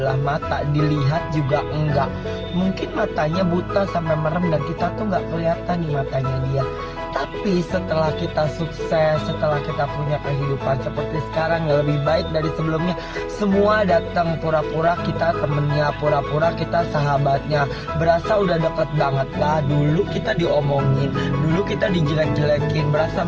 mata, dilihat juga enggak. Mungkin matanya buta sampai merem dan kita tuh nggak kelihatan nih matanya dia. Tapi setelah kita sukses, setelah kita punya kehidupan seperti sekarang yang lebih baik dari sebelumnya, semua datang pura-pura kita temennya, pura-pura kita sahabatnya. Berasa udah deket banget lah. Dulu kita diomongin, dulu kita dijelek-jelekin, berasa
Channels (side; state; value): both; identical; correlation 1.00